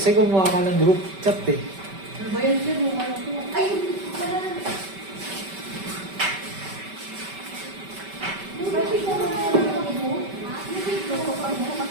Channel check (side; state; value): left; late; 5.2 ms